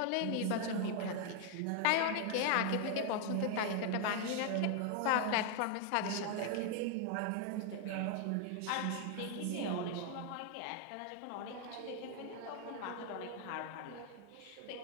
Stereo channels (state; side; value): different; both; correlation 0.00